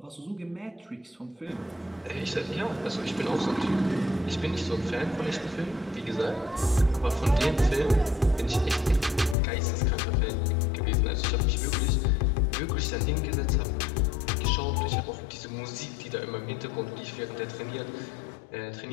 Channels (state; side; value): drops out; right; at 9.3 s